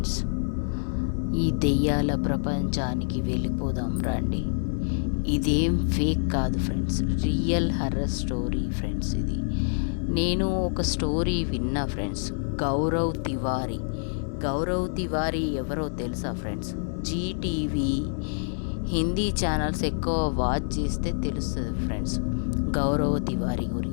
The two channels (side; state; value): right; silent; 60 dB below the other